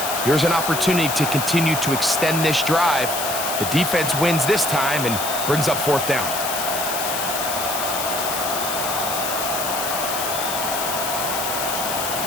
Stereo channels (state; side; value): noise; left; hiss, 3 dB below the sound